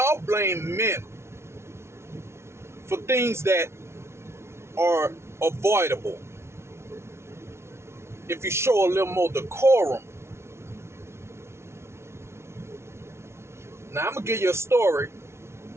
blame men for things that are avoidable. If you show a little more decorum. Now, I'm going to give you a story,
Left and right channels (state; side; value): late; left; 0.13 ms